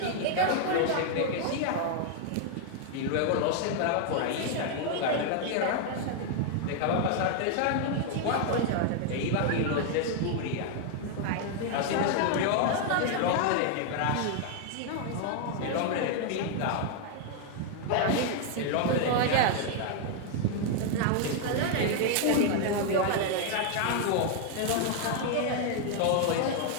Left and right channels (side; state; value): both; different; correlation 0.00